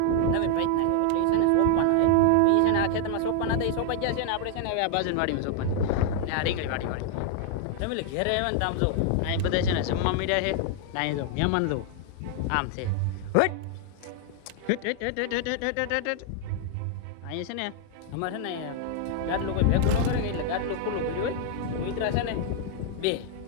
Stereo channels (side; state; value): both; different; correlation 0.00